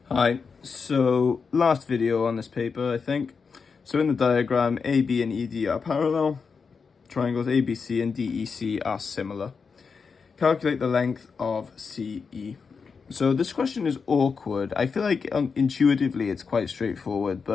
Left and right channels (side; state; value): right; quieter; 5.4 dB